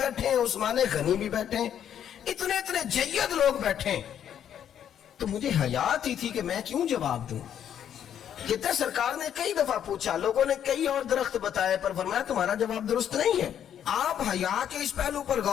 عثمان غنی بھی بیٹھے, اتنے جید لوگ بیٹھے, تو مجھے حیا آتی تھی کہ میں کیوں جواب دوں. کہتے سرکار نے کئی دفعہ پوچھا, لوگوں نے کئی اور درخت بتائے, پر فرمایا تمہارا جواب درست نہیں ہے. آپ حیا کے اس پہلو پر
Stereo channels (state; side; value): quieter; right; 9.5 dB